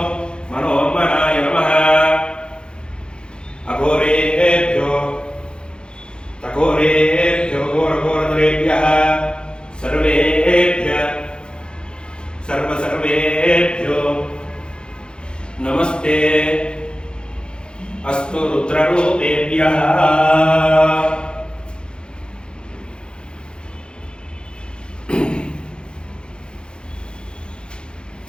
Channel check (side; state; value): right; late; 0.050 ms